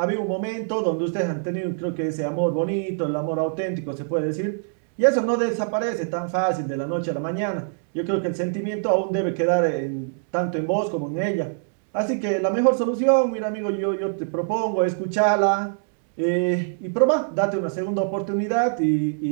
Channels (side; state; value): left; silent; digital silence